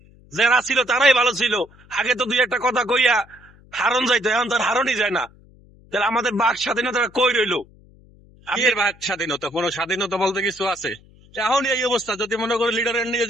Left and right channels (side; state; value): left; noise; hum, 26 dB below the sound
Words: যারা ছিল তারাই ভালো ছিল। আগে তো 2 একটা কথা কইয়া হারন যাইতো, এখন তার হারনই যায় না। তাহলে আমাদের বাক স্বাধীনতাটা কই রইলো? এর ভাগ স্বাধীনতা, কোন স্বাধীনতা বলতে কিছু আছে? এখন এই অবস্থা, যদি মনে করি লিডারের নিয়ে